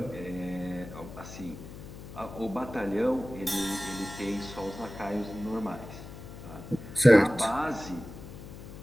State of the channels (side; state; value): left; noise; hum, 13 dB below the sound